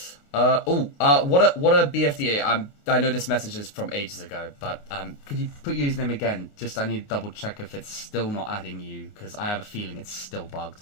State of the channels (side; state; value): right; late; 28 ms